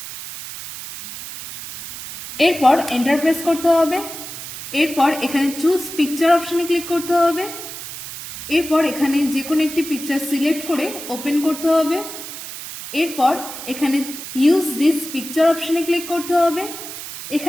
এরপর এন্টার প্রেস করতে হবে। এরপর এখানে চুজ পিকচার অপশনে ক্লিক করতে হবে। এরপর এখানে যে কোনো একটি পিকচার সিলেক্ট করে ওপেন করতে হবে। এরপর এখানে ইউজ দিস পিকচার অপশনে ক্লিক করতে হবে।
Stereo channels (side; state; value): right; noise; hiss, 10 dB below the sound